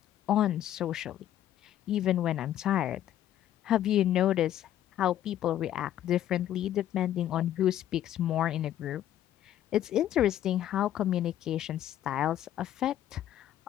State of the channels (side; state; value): right; quieter; 11.8 dB